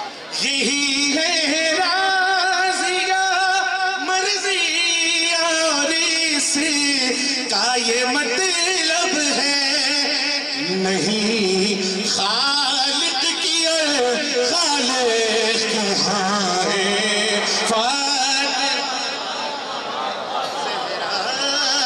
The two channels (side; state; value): both; identical; correlation 1.00